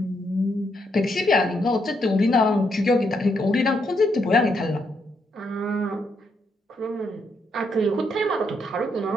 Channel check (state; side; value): normal; both; correlation 0.77